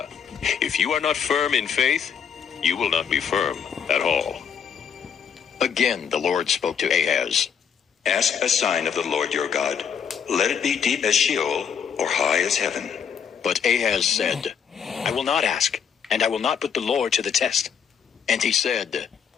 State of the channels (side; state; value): right; quieter; 7.4 dB